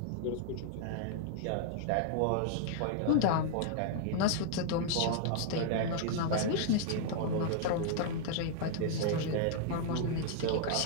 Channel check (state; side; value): different; both; correlation -0.01